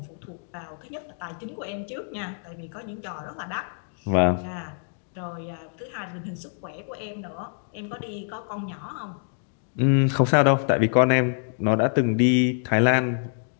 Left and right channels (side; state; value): right; silent; digital silence